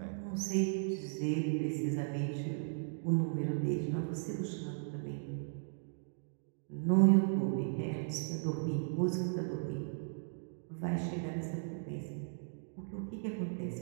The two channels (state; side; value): silent; left; digital silence